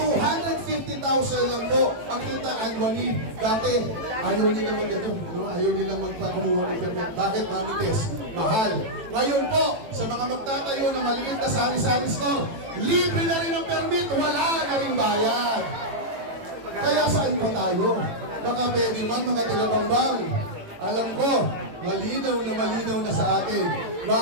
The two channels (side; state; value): left; late; 18 ms